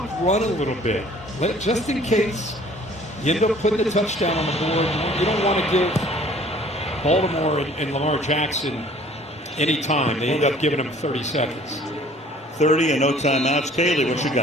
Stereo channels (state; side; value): normal; both; correlation 0.53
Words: run a little bit. Just in case you end up putting the touchdown on the board. You don't want to give Baltimore and Lamar Jackson any time. They end up giving him 30 seconds. 30 and no timeouts. Kaylee, what you